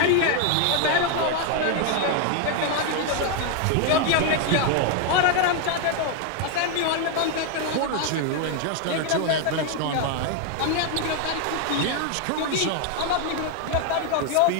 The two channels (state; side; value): different; both; correlation 0.01